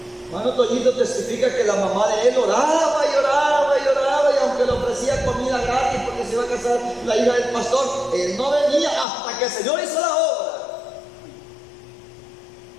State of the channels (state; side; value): drops out; right; at 9.1 s